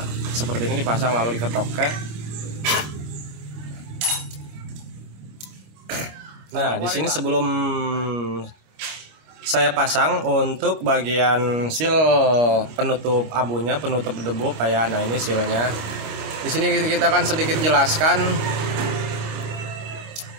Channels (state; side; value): late; left; 27 ms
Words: Seperti ini dipasang lalu diketok. Oke. Nah, di sini sebelum saya pasang untuk bagian seal penutup abunya, penutup debu Pak ya. Nah, ini sealnya. Di sini kita akan sedikit jelaskan